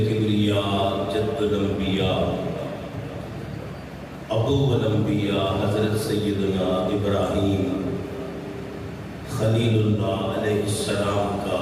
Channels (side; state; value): both; identical; correlation 1.00